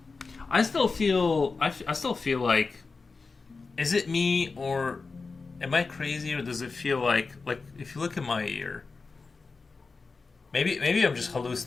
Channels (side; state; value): right; quieter; 4.3 dB